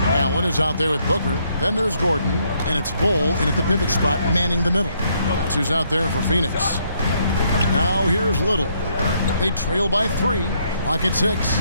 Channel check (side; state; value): both; inverted; correlation -0.72